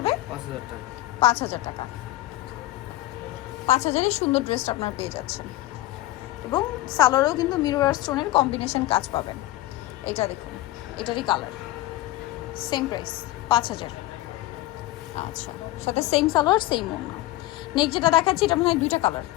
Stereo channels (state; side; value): quieter; right; 16.7 dB